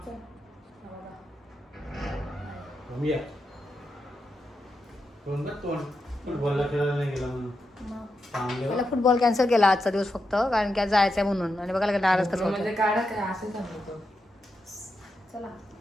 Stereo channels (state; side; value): normal; both; correlation 0.86